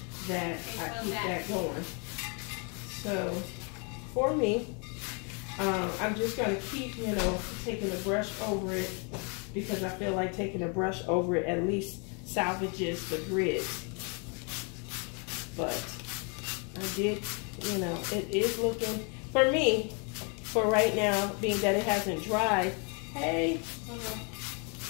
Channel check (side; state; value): right; quieter; 35.7 dB